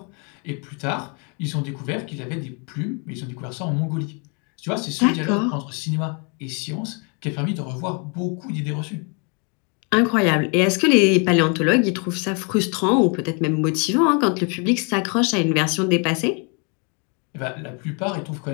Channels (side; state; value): right; quieter; 35.4 dB